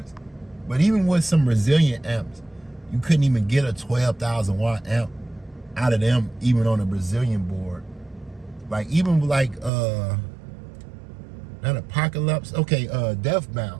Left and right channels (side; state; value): left; drops out; at 9.7 s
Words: But even with some Brazilian amps, you couldn't even get a 12,000 watt amp out of them, even on a Brazilian board. Like even like not Apocalypse, okay, Death